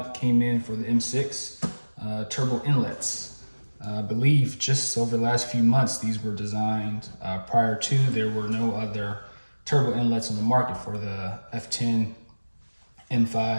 came in for the M6 turbo inlets. I believe just over the last few months these were designed. Prior to, there were no other turbo inlets on the market for the F10,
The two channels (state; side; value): inverted; both; correlation -1.00